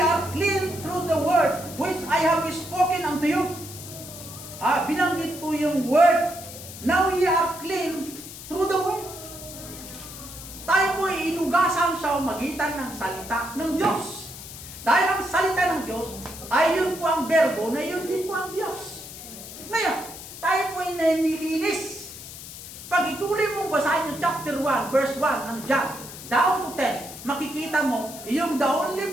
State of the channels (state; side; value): noise; left; hiss, 13 dB below the sound